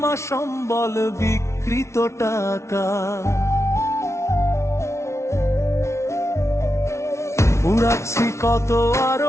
সম্বল বিকৃত টাকা। উড়াচ্ছি কত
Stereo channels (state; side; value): late; right; 0.13 ms